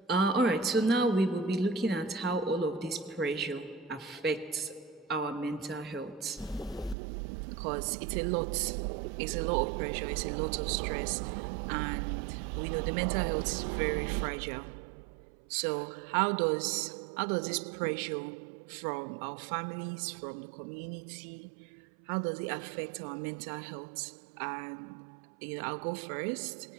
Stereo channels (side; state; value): left; drops out; at 7.0 s